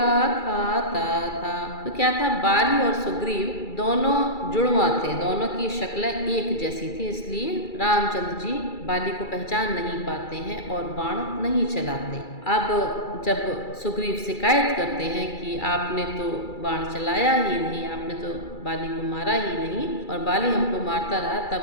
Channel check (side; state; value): right; late; 2.3 ms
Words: खाता था। तो क्या था, बाली और सुग्रीव दोनों जुड़वा थे, दोनों की शक्लें एक जैसी थी, इसलिए रामचंद्र जी बाली को पहचान नहीं पाते हैं और बाण नहीं चलाते। अब जब सुग्रीव शिकायत करते हैं कि आपने तो बाण चलाया ही नहीं, आपने तो बाली को मारा ही नहीं और बाली हमको मारता रहा,